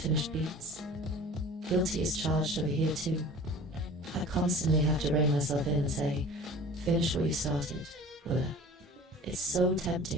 beats. Guilty is charged over here too. I constantly have to rein myself in and say, finish what you started, Willa. It's so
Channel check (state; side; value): normal; both; correlation 0.42